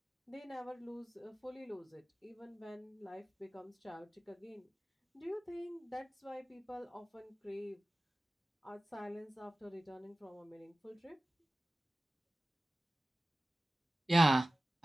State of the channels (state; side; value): normal; both; correlation 0.96